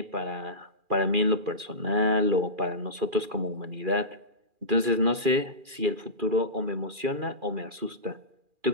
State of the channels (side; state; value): left; late; 2.4 ms